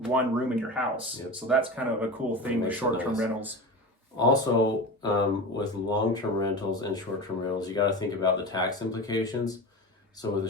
in your house. Yep. So that's kind of a cool thing with short-term rentals. Also, with long-term rentals and short-term rentals, you got to think about the tax implications. So with a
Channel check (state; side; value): normal; both; correlation 0.28